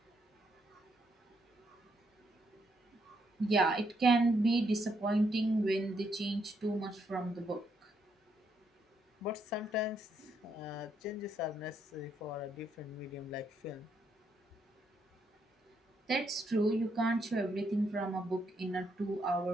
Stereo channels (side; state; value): both; normal; correlation 0.76